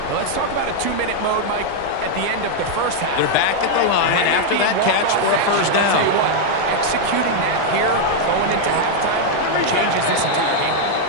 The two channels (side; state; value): both; different; correlation 0.00